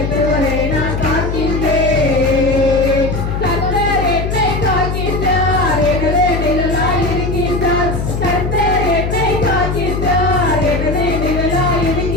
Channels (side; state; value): left; noise; hum, 2 dB below the sound